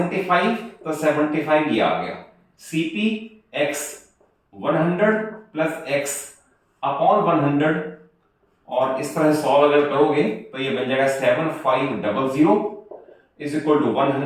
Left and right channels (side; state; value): both; identical; correlation 1.00